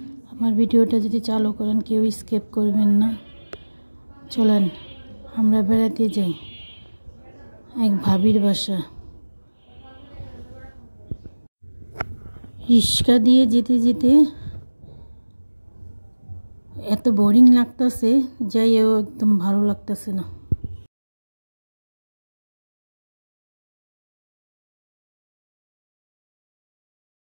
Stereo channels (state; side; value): inverted; both; correlation -1.00